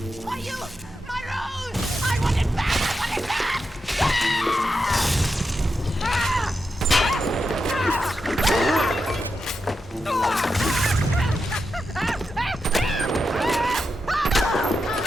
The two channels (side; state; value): both; normal; correlation 0.87